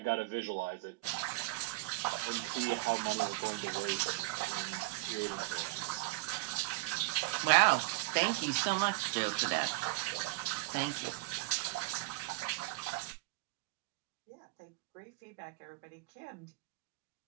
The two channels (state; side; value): quieter; left; 21.8 dB